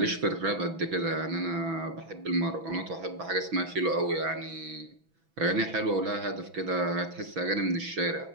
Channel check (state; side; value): late; left; 6.1 ms